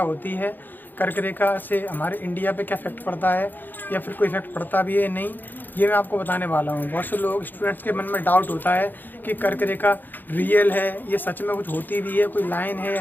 है, कर्क रेखा से हमारे इंडिया पे क्या इफेक्ट पड़ता है या फिर कोई इफेक्ट पड़ता भी है नहीं, ये मैं आपको बताने वाला हूँ। बहुत से लोग स्टूडेंट्स के मन में डाउट होता है कि कर्क रेखा रियल है, ये सच में कुछ होती भी है, कोई लाइन है या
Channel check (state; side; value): late; right; 0.089 ms